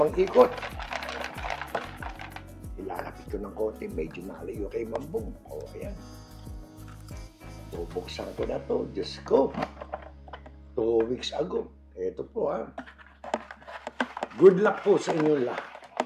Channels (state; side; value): identical; both; correlation 1.00